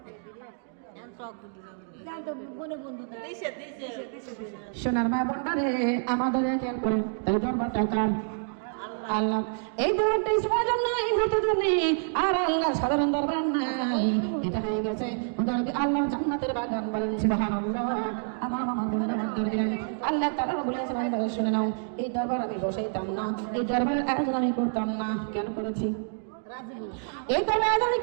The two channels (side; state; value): left; silent; digital silence